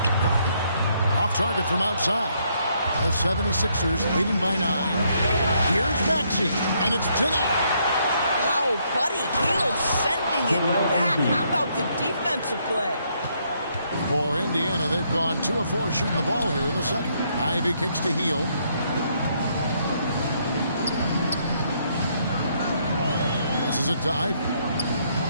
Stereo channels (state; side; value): inverted; both; correlation -0.72